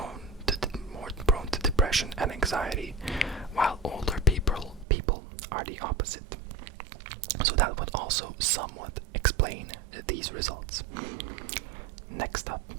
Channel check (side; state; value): left; drops out; at 4.9 s